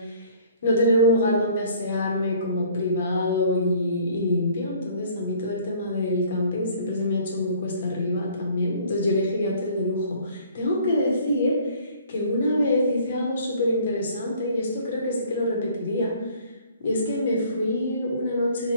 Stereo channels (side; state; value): both; inverted; correlation -0.55